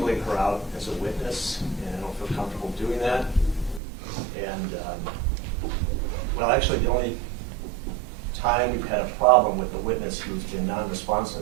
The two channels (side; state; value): left; drops out; at 3.8 s